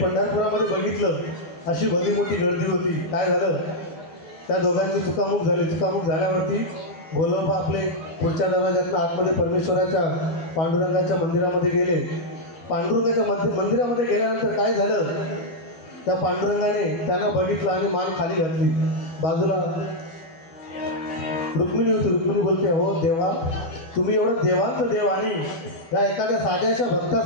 बघितलं अशी भली मोठी गर्दी होती. काय झालं, त्या दोघांची चुकामुक झाली. चुकामुक झाल्यावरती गोलोबा आपले पुढच्या दरवाज्यातून आतमध्ये परमेश्वराच्या पांडुरंगाच्या मंदिरामध्ये गेले. पांडुरंगाच्या मंदिरामध्ये गेल्यानंतर काय झालं, त्या पांडुरंगाने त्यांना बघितलं आणि मान खाली घातली. बाजूला रुक्मिणी होती. रुक्मिणी बोलते, हो देवा, तुम्ही एवढं देवांचं देव आणि या एखाद्या साध्याच्या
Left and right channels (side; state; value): right; late; 12 ms